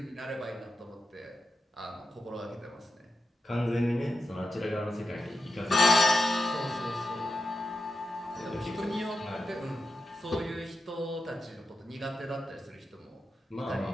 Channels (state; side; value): normal; both; correlation 0.89